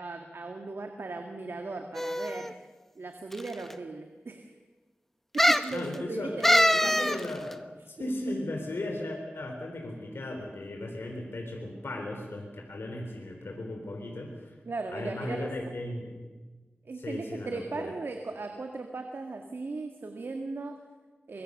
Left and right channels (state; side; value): normal; both; correlation 0.93